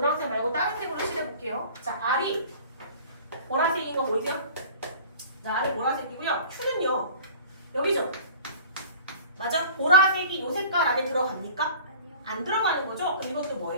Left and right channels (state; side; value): inverted; both; correlation -0.44